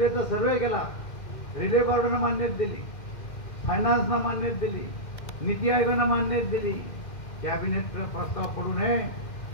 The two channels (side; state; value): right; late; 2.1 ms